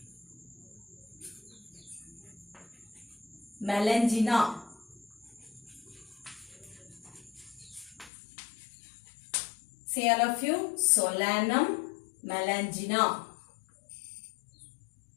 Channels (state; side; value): drops out; right; at 8.1 s